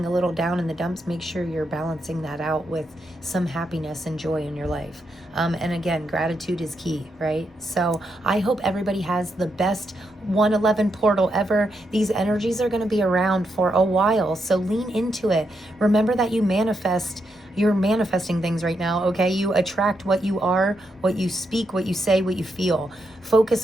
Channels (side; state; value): both; normal; correlation 0.82